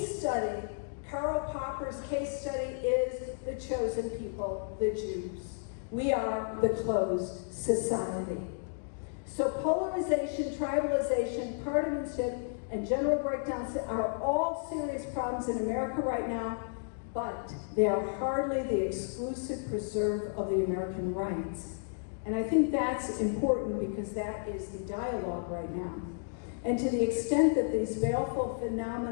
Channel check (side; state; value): right; silent; digital silence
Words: study, Karl Popper's case study, is the chosen people, the Jews. We are the closed society. So polarization, tribalization, partisanship, and general breakdowns are all serious problems in America right now, but they are hardly the exclusive preserve of the American rights. And I think that's important because that is the dialogue right now. And to the extent that these baleful